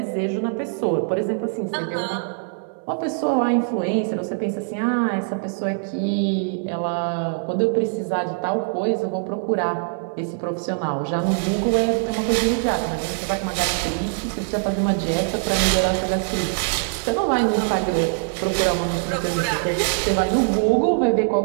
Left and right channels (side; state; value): left; silent; digital silence